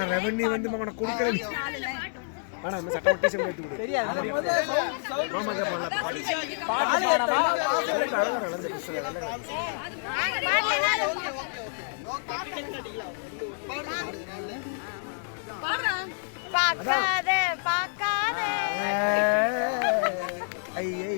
ரெவன்யூ வந்து அவனை கொடுக்கறது ஆனா இந்த சட்டம் டீச்சர் எடுத்து கொடு தெரியாது மாமா தான் பாக்காத பாக்காத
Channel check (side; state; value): right; silent; digital silence